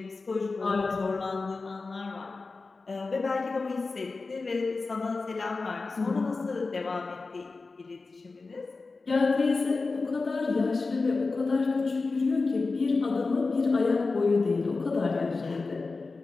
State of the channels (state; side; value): quieter; right; 3.9 dB